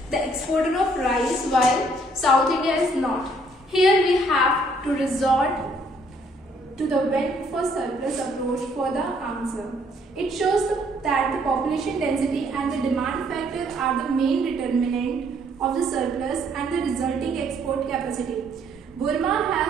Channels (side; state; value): both; normal; correlation 0.65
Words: the exporter of rice while South India is not? Here we have to resort to the went for surplus approach for the answer. It shows that the population density and the demand factor are the main determinant of the surplus and the resulting export capacity. Burma